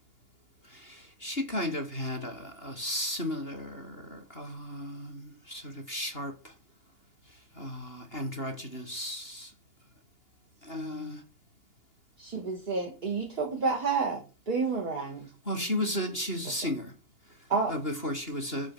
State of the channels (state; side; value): late; right; 2.8 ms